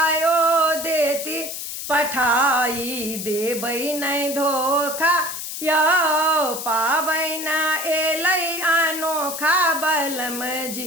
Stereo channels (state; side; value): noise; left; hiss, 7 dB below the sound